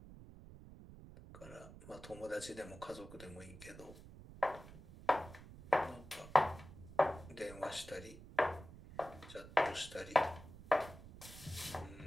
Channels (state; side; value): noise; right; rumble, 16 dB below the sound